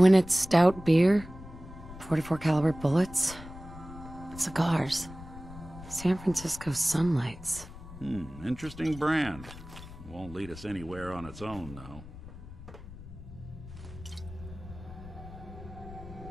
stout beer, 44 caliber bullets, cigars, San Francisco Sunlights. Interesting brand. Won't lead us anywhere on its own, though.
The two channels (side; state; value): left; noise; rumble, 14 dB below the sound